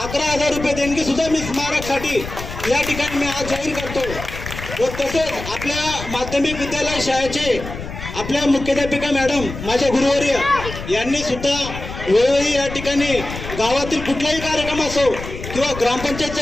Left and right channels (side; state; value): left; noise; rumble, 10 dB below the sound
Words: 11,000 रुपये देणगी सुद्धा मी स्मारकसाठी या ठिकाणी मी आज जाहीर करतो. व तसेच आपल्या माध्यमिक विद्यालय शाळेचे आपल्या मुख्याध्यापिका मॅडम माझ्या गुरुवर्य यांनी सुद्धा वेळोवेळी या ठिकाणी गावातील कुठलाही कार्यक्रम असो किंवा ग्रामपंचायतचा